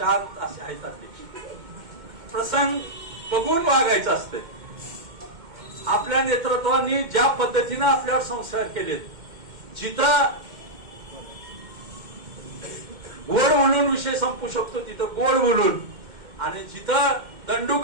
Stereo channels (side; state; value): left; late; 2.1 ms